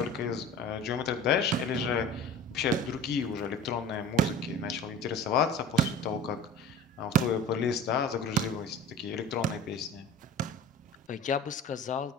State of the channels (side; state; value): both; normal; correlation 0.38